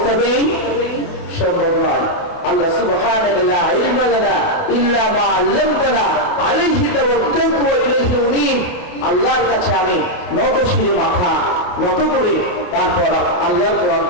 সম্ভব নয়। আল্লাহ সুবহানাকা লা ইলমা লানা ইল্লা মা আল্লামতানা আলাইহি তাওয়াক্কালতু ওয়া ইলাইহি উনীব। আল্লাহর কাছে আমি নত শিরে মাথা নত করে তারপর আল্লাহর কোরআন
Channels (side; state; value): right; late; 28 ms